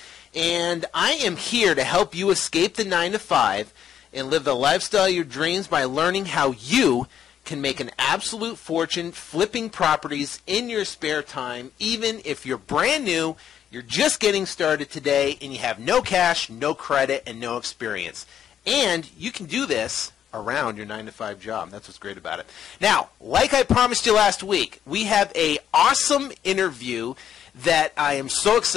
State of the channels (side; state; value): right; quieter; 9.5 dB